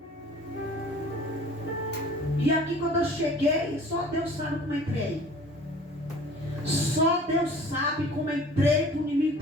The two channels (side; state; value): both; normal; correlation 0.46